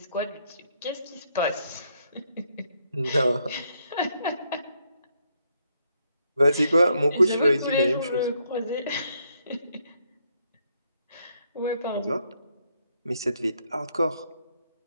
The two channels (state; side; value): inverted; both; correlation -0.74